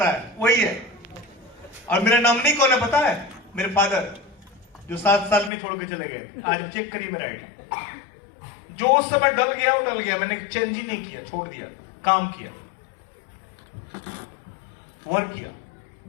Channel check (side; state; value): right; drops out; at 5.5 s